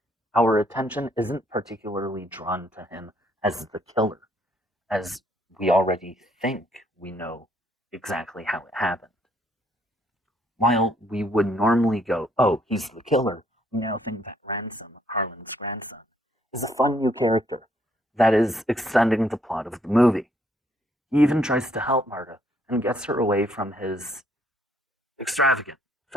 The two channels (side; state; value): both; normal; correlation 0.68